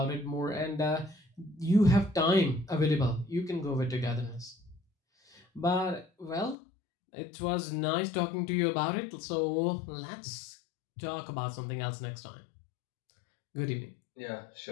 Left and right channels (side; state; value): right; drops out; at 6.6 s